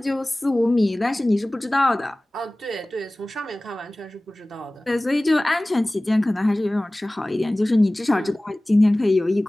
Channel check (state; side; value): normal; both; correlation 0.98